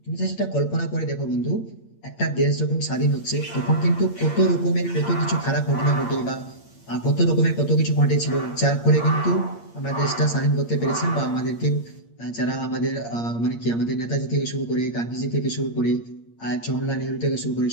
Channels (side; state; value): right; late; 8.7 ms